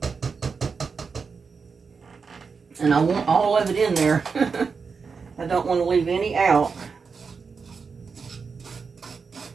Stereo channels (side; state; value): left; quieter; 5.3 dB